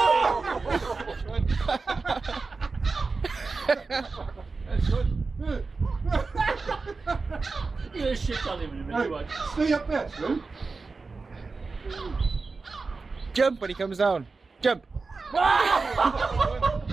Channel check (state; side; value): quieter; left; 4.1 dB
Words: That's good. You're gonna shit on him in a minute. Right, stay up there, Slim. Jump when he comes down. Jump.